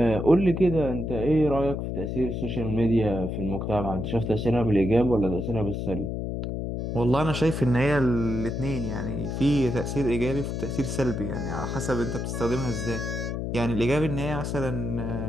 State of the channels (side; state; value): left; noise; hum, 3 dB below the sound